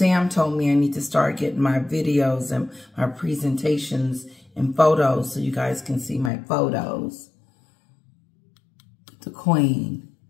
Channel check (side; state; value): right; drops out; at 6.3 s